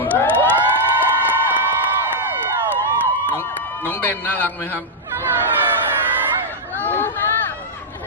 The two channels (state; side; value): normal; both; correlation -0.05